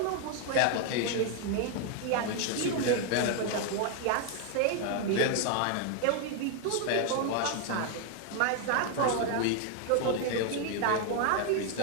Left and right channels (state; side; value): different; both; correlation 0.00